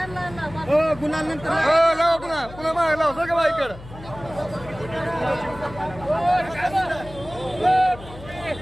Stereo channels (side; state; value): left; noise; hum, 16 dB below the sound